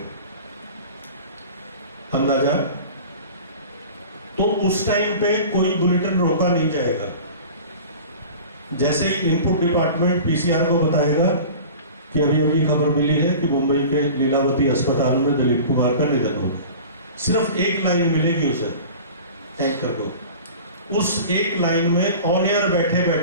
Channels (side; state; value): both; inverted; correlation -0.39